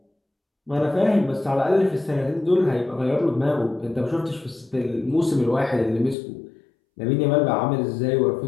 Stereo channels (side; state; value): right; drops out; at 6.2 s